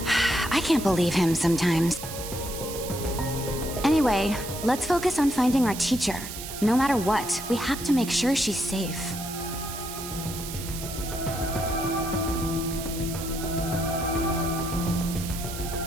I can't believe him sometimes. Anyway, let's focus on finding our teacher. No matter what, we have to make sure she's safe.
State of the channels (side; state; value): right; noise; hiss, 9 dB below the sound